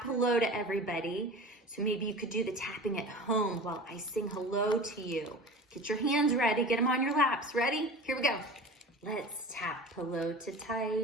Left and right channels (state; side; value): normal; both; correlation 0.35